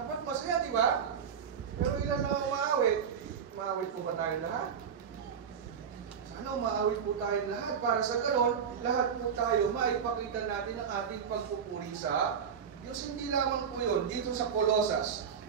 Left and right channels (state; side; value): quieter; left; 7.2 dB